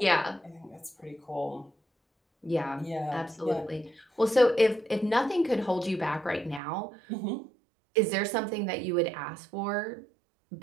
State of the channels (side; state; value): left; drops out; at 6.6 s